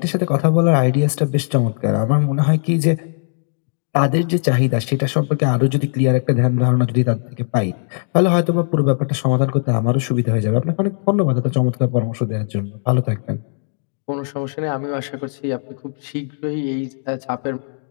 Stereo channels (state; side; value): silent; right; digital silence